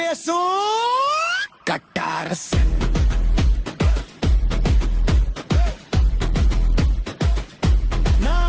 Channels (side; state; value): both; identical; correlation 1.00